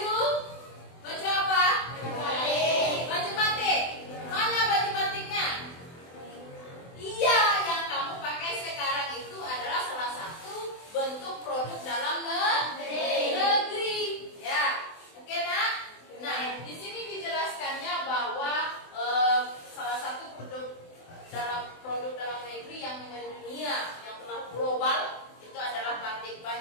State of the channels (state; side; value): late; right; 24 ms